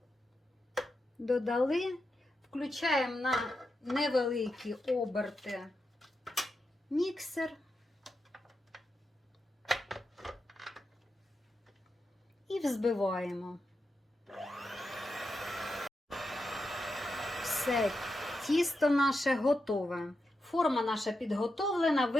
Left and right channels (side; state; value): both; normal; correlation 0.87